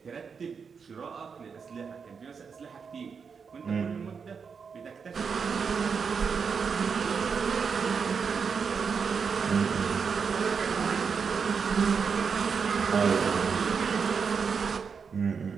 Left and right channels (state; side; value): quieter; left; 5.9 dB